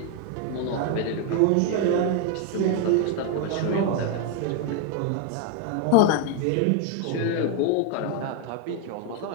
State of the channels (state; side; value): different; both; correlation 0.01